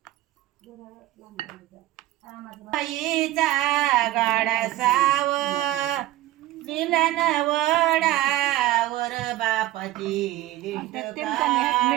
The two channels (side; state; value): left; quieter; 15.6 dB